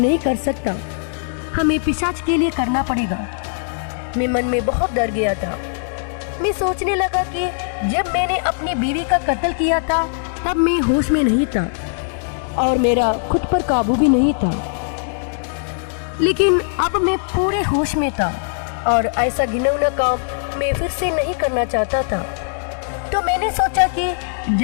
कर सकता। हमें पिशाच के लिए करना पड़ेगा। मैं मन में बहुत डर गया था। मैं सोचने लगा कि जब मैंने अपनी बीवी का कत्ल किया था तब मैं होश में नहीं था और मेरा खुद पर काबू भी नहीं था, लेकिन अब मैं पूरे होश में था और ऐसा घिनौना काम मैं फिर से नहीं करना चाहता था। तो मैंने सोचा कि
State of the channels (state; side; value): silent; right; 66 dB below the other